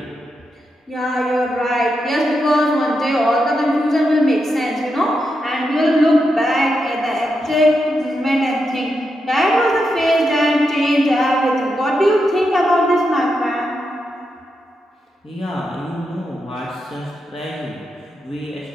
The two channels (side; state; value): both; normal; correlation 0.85